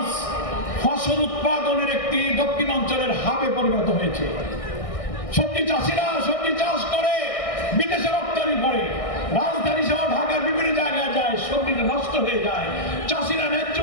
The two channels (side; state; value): right; late; 1.6 ms